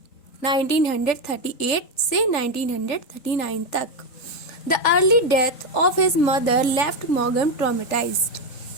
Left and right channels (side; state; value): right; late; 3.8 ms